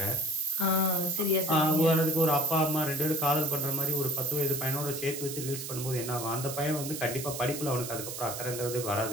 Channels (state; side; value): noise; right; hiss, 7 dB below the sound